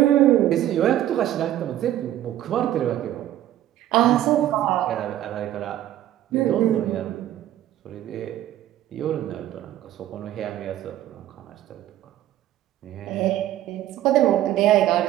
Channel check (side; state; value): left; quieter; 12.9 dB